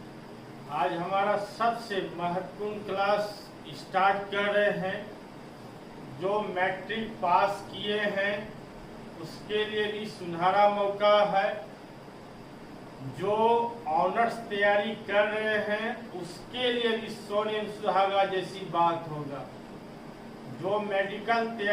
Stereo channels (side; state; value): both; identical; correlation 1.00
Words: आज हमारा सबसे महत्वपूर्ण क्लास स्टार्ट कर रहे हैं। जो मैट्रिक पास किए हैं उसके लिए भी सुनहरा मौका है। जो ऑनर्स तैयारी कर रहे हैं उसके लिए भी सोने सुहागा जैसी बात होगा। जो मेडिकल